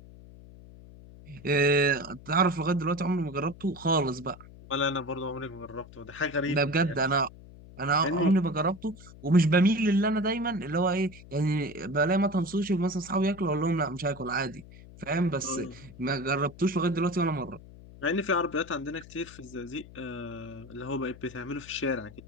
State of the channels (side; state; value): left; noise; hum, 19 dB below the sound